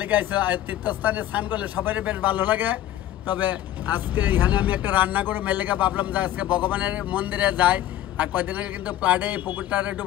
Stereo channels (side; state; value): right; quieter; 12.9 dB